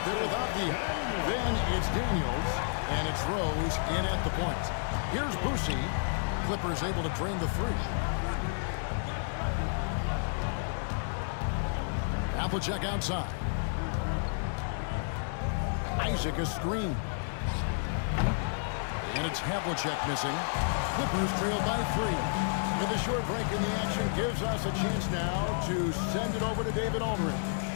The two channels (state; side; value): silent; right; digital silence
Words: there with Avdija. Then it's Daniels, and it's Rose in at the point. Here's Boosie. Clippers able to drain the 3. Havlicek outside. Isaac a screen. And it's Havlicek missing. Clippers trailed by 3. And the short break in the action gives us a chance now to send it over to David Aldridge.